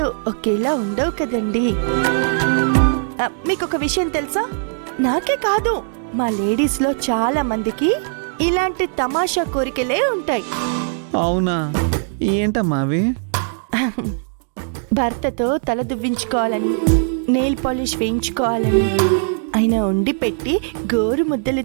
ఒకేలా ఉండవు కదండి. మీకు ఒక విషయం తెలుసా? నాకే కాదు, మా లేడీస్ లో చాలా మందికి ఇలాంటి తమాషా కోరికలే ఉంటాయి. అవునా? ఏంటమ్మా అవి? భర్తతో తల దువ్వించుకోవాలని, నెయిల్ పాలిష్ వేయించుకోవాలని, ఆయన వండి పెట్టి గోరు ముద్దలు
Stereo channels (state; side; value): silent; left; digital silence